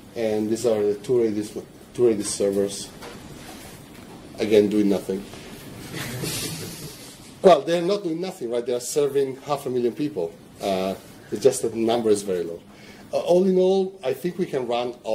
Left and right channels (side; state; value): both; identical; correlation 1.00